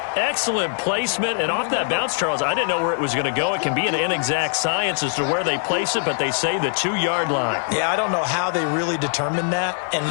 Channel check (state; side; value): silent; right; digital silence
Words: Excellent placement, and off that bounce, Charles, I didn't know where it was going to go. It can be an inexact science as to where they place it, but they say the 2-yard line. Yeah, I don't know how they really determined that. And